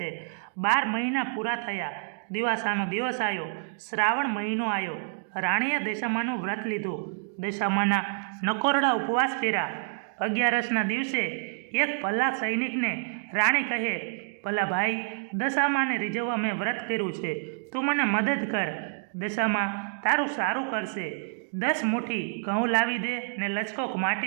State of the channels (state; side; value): silent; left; digital silence